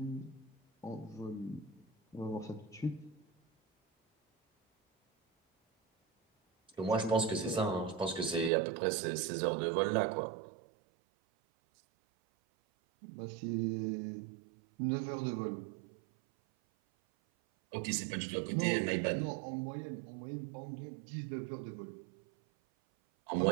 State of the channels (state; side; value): drops out; left; at 8.5 s